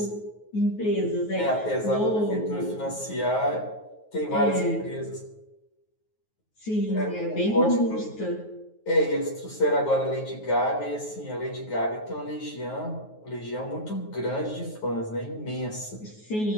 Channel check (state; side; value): late; right; 9.4 ms